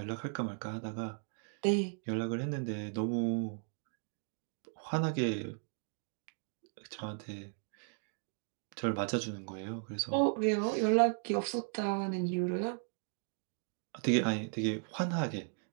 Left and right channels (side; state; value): left; silent; 54 dB below the other